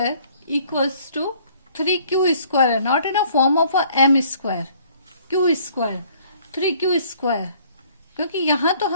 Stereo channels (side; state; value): both; inverted; correlation -0.58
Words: equals to 3q square, not in a form of a m square, q square, 3q square, क्योंकि यहाँ तो